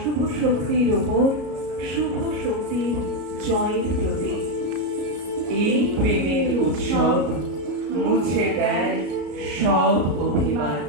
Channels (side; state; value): left; late; 33 ms